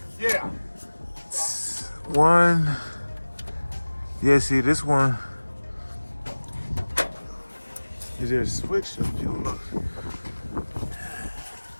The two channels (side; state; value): both; inverted; correlation -1.00